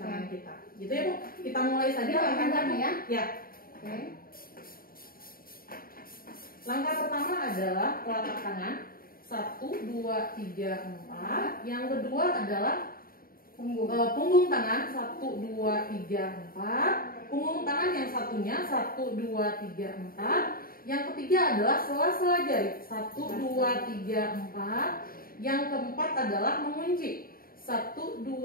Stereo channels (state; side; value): late; right; 0.42 ms